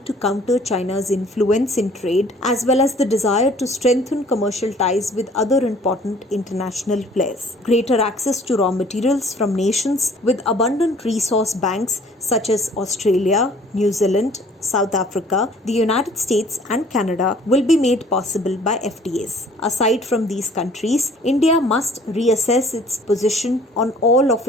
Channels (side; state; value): both; normal; correlation 0.54